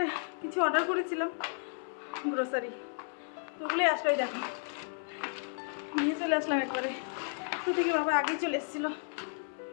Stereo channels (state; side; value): silent; right; 56 dB below the other